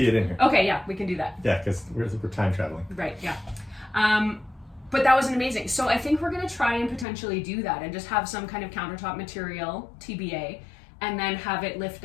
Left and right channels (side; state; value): right; drops out; at 7.1 s